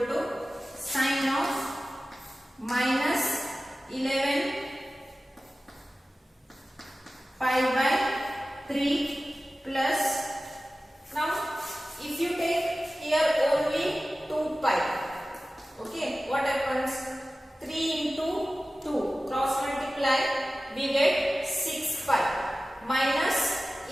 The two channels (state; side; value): normal; both; correlation 0.96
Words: to sine of minus 11 pi by 3 plus, now if you take here only 2 pi, okay, what happens? 3 into 2 cross multiply, we get 6 pi minus